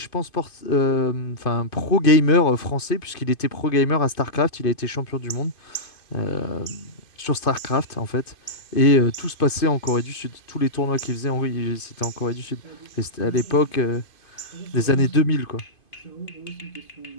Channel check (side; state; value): right; late; 2.5 ms